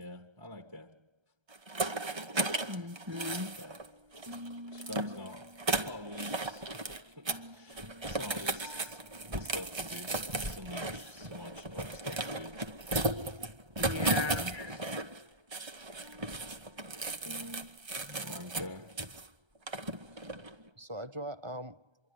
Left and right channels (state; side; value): late; left; 1.3 ms